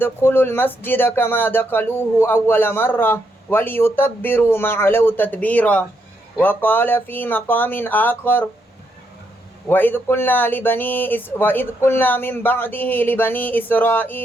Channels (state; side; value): normal; both; correlation 0.78